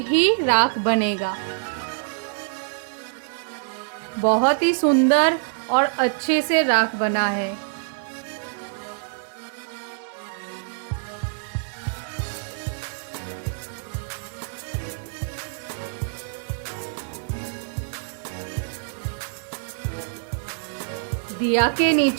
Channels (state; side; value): silent; left; 60 dB below the other